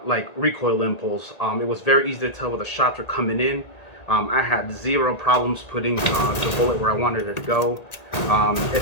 like recoil impulse. It was very easy to tell where the shots were coming in. I had zero problems putting the bullet where I wanted it to go. It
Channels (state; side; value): late; right; 1.8 ms